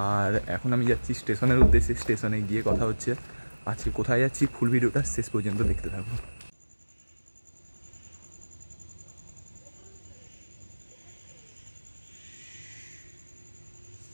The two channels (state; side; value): inverted; both; correlation -1.00